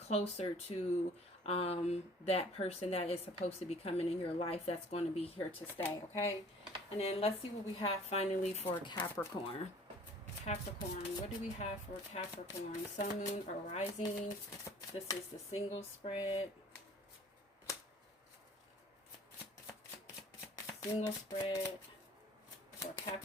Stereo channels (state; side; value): normal; both; correlation 0.52